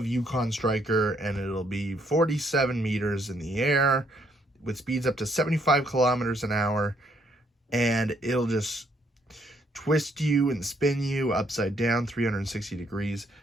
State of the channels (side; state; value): both; normal; correlation 0.70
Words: Yukon Striker, and it'll be 47 meters in the air with speeds up to 75 kilometers an hour, and it'll just twist you and spin you upside down 360 degrees.